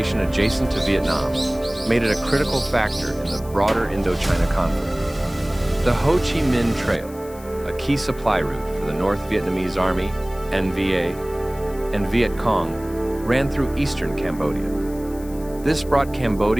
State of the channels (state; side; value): noise; left; hiss, 21 dB below the sound